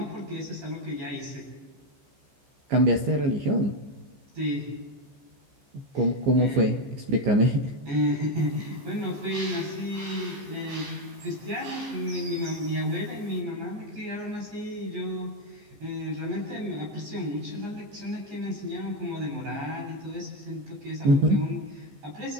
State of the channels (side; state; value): left; late; 14 ms